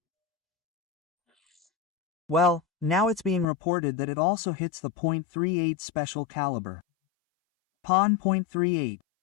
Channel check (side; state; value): right; drops out; at 3.5 s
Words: Well, now it's being reported that it also hits the .38 special caliber. .38.